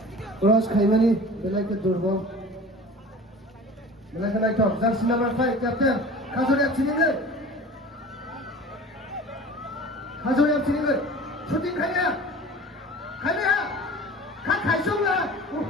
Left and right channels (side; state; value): both; normal; correlation 0.40